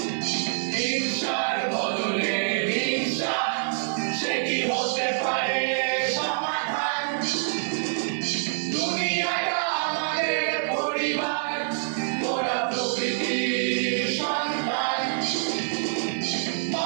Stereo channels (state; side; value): silent; left; 61 dB below the other